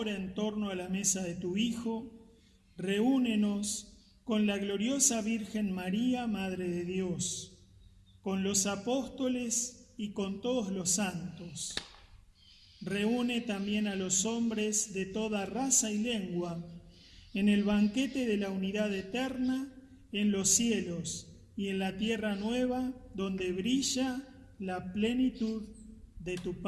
en torno a la mesa de tu Hijo, reúnenos con la gloriosa Virgen María, Madre de Dios, con los apóstoles y con todos los santos. Reúne también a los hombres de toda raza y lengua en el banquete de la unidad eterna en los cielos y en la tierra nueva, donde brilla la plenitud de tu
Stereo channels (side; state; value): both; identical; correlation 1.00